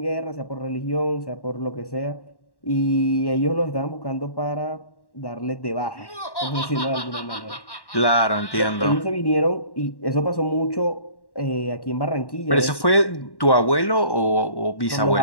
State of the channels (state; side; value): late; right; 1.1 ms